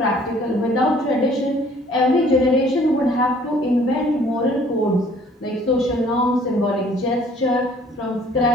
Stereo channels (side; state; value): both; normal; correlation 0.57